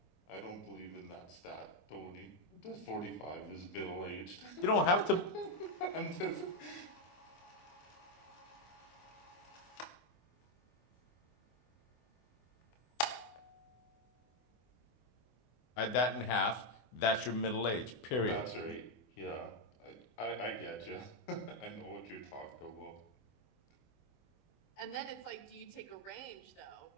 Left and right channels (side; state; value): right; late; 24 ms